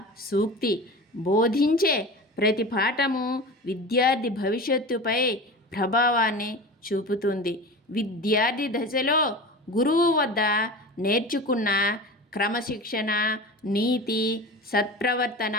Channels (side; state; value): both; normal; correlation 0.32